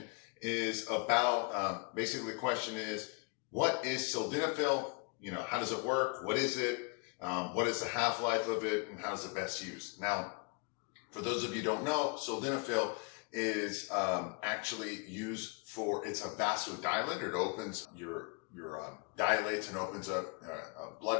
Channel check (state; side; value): quieter; right; 31.8 dB